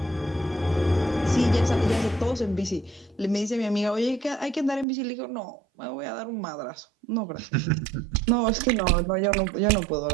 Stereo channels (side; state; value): left; drops out; at 4.9 s